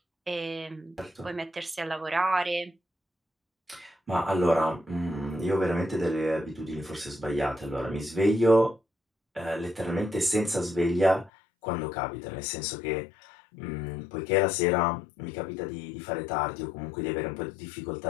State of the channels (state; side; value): drops out; right; at 11.3 s